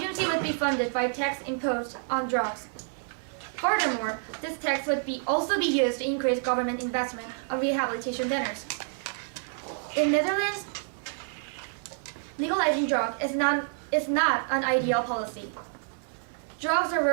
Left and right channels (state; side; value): silent; left; digital silence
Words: would be funded by tax imposed on drugs. Furthermore, this tax would also be used to increase government investment on rehabilitation centers. In Netherlands, legalizing drugs is not an ideal policy. Drugs